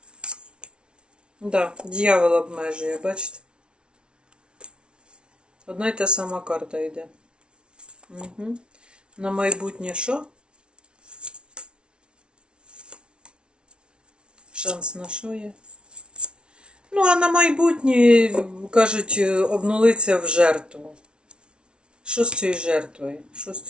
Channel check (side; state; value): left; late; 0.057 ms